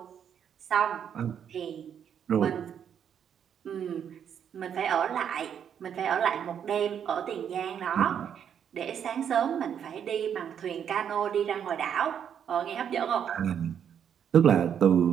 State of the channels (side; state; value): left; quieter; 8.5 dB